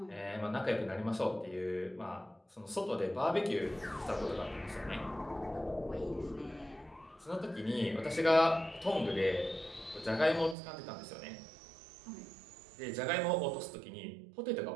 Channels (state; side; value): drops out; left; at 10.6 s